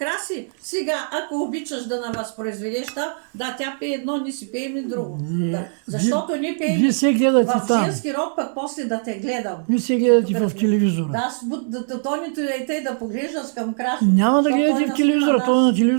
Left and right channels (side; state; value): left; silent; digital silence